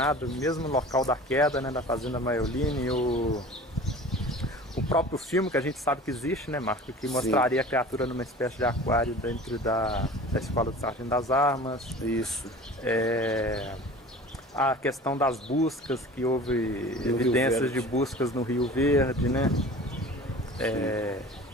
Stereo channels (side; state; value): both; normal; correlation 0.41